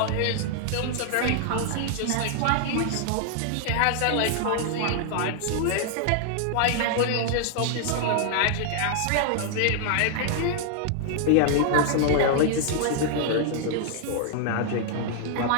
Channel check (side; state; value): both; different; correlation 0.00